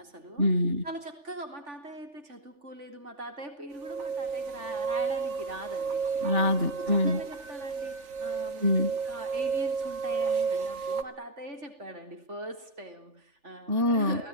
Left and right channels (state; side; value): late; left; 3.4 ms